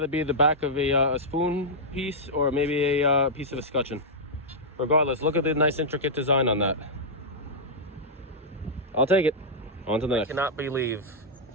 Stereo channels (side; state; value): both; normal; correlation -0.08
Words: be the back of a spoon piece or maybe a piece of a scutcheon. Regardless, look at the nice intricate design on that. I'll take it. On to the next. I cannot believe